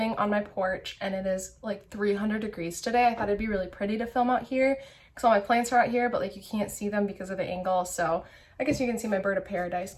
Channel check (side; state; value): both; identical; correlation 1.00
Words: on my porch and it is like 300 degrees today. I thought it'd be really pretty to film out here because all my plants are out here, but like you can't see them because of the angle. So I guess you can see my bird of paradise